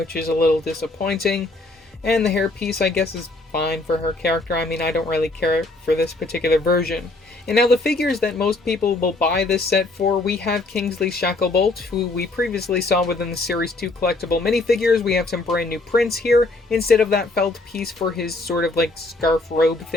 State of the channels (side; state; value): right; quieter; 3.0 dB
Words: is a little disappointing. And the hairpiece, I guess, is fine for her character. I mean, I don't really care for this particular version. And now the figures that most people will buy this set for, we have Kingsley Shacklebolt, who we previously saw within the Series 2 collectible minifigures. We have some brand new prints here. Instead of that felt piece for his sort of like scarf robe